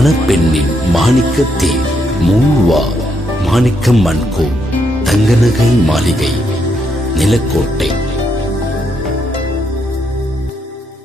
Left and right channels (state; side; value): normal; both; correlation 0.77